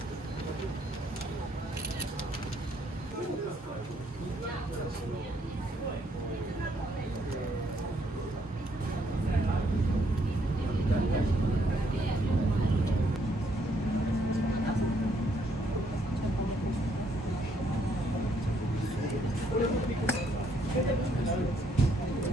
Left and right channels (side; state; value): both; normal; correlation 0.70